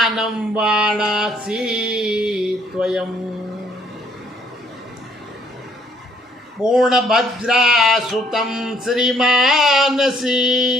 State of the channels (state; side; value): normal; both; correlation 0.65